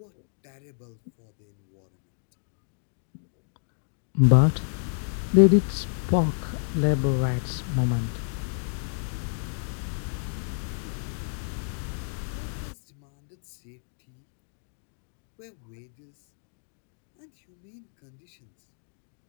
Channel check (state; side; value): silent; right; digital silence